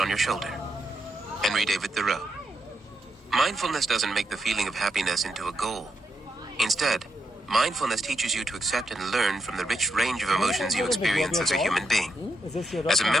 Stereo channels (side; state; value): both; normal; correlation 0.82